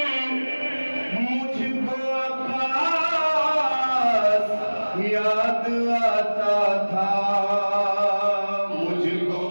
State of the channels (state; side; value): inverted; both; correlation -1.00